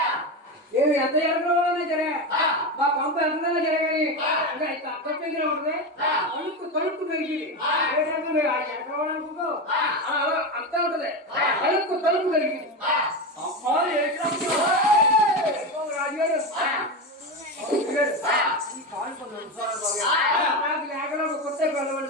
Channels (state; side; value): normal; both; correlation 0.18